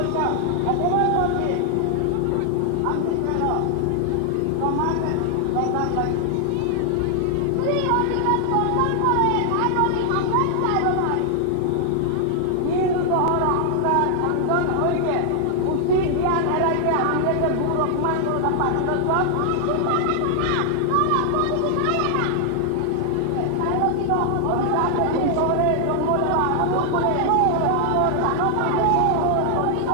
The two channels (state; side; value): different; both; correlation 0.00